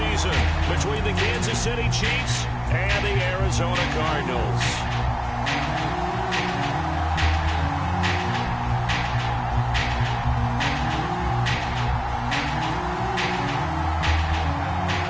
between the Kansas City Chiefs and the Arizona Cardinals.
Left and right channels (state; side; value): identical; both; correlation 1.00